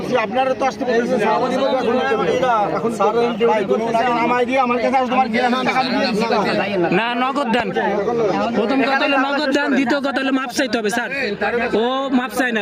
আপনারা তো আসতে বলছেন। এখন আমায় দিয়ে আমার কাছে আসবে, তোমার গিয়ে টাকা দিয়ে না নগদ দেন। প্রথম কথা হলো নগদ দেন, দ্বিতীয় কথা হলো মাপ চাইতে হবে স্যার। ও মাপ চাই না,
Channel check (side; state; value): both; identical; correlation 1.00